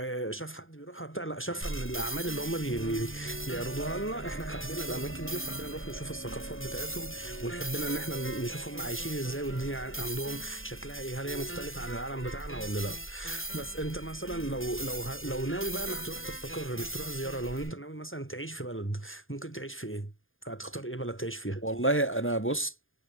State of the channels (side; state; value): right; late; 0.59 ms